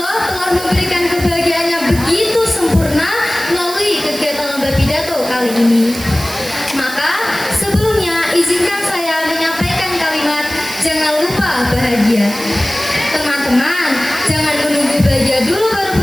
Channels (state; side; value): noise; right; hiss, 12 dB below the sound